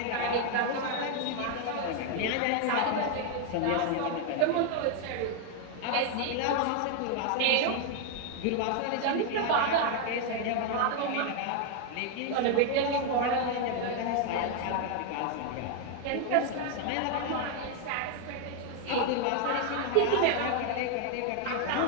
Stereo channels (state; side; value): different; both; correlation 0.01